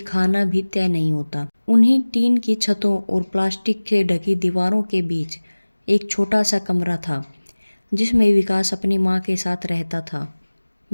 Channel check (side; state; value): both; inverted; correlation -1.00